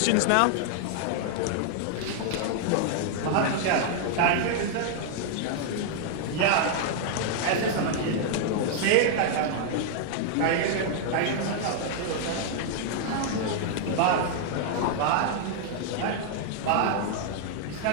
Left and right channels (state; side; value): different; both; correlation 0.00